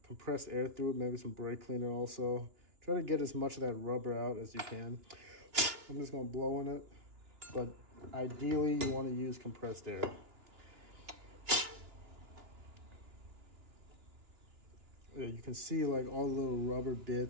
compressed air through it, maybe some brake cleaner also. Try to get as much of that rubber out as you can. I'm just gonna blow on it, but ideally you want to use compressed air. Yeah, you can see like all the little rubber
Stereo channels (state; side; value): late; left; 2.9 ms